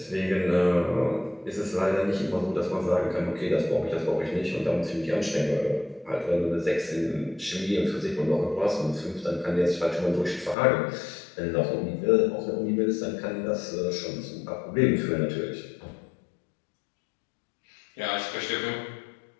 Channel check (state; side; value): drops out; right; at 10.6 s